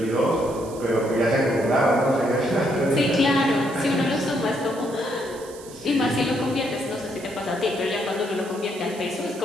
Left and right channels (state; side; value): noise; right; hiss, 19 dB below the sound